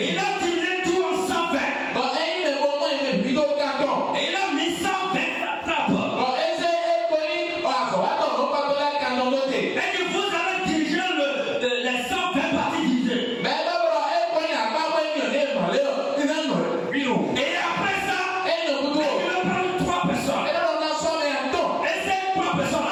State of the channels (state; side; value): identical; both; correlation 1.00